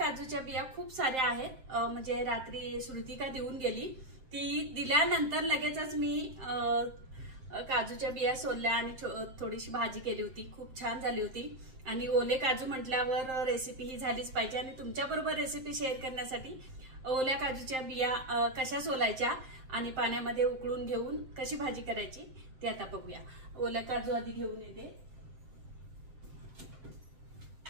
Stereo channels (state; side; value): late; left; 7.6 ms